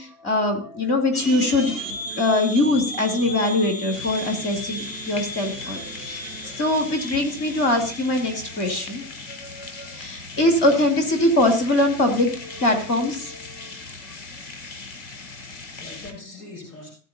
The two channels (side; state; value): right; late; 2.2 ms